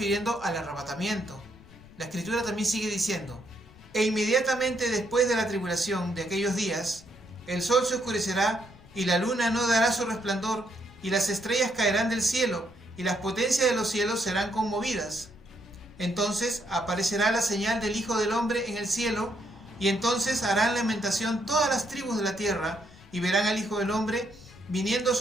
al arrebatamiento. La Escritura también sigue diciendo: E inmediatamente después de la tribulación de aquellos días, el sol se oscurecerá y la luna no dará su resplandor, y las estrellas caerán del cielo, y las potencias de los cielos serán conmovidas. Entonces aparecerá la señal del Hijo del Hombre en el cielo, y entonces harán lamentación todas las tribus de la tierra, y verán al Hijo del Hombre viniendo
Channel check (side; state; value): left; noise; rumble, 23 dB below the sound